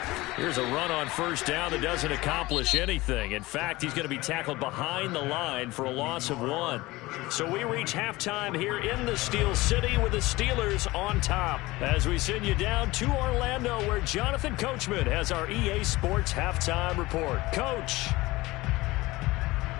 Here's a run on first down that doesn't accomplish anything. In fact, he's going to be tackled behind the line for a loss of 1. So we reach halftime here in the Steel City with the Steelers on top. As we send you down to Orlando, where Jonathan Coachman has our EA Sports halftime report. Coach.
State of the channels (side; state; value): right; quieter; 20.1 dB